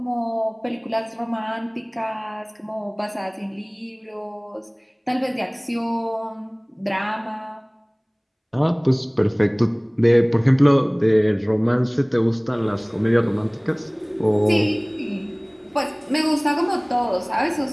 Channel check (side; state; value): both; identical; correlation 1.00